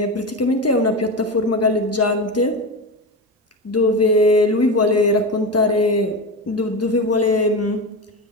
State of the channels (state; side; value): normal; both; correlation 0.21